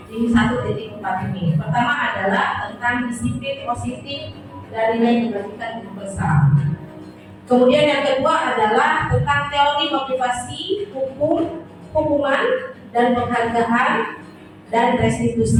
di 1.4 ini. Pertama adalah tentang disiplin positif dari nilai dibagikan guru besar. Kemudian yang kedua adalah tentang teori motivasi, hukum, hukuman dan penghargaan dan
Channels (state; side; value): identical; both; correlation 1.00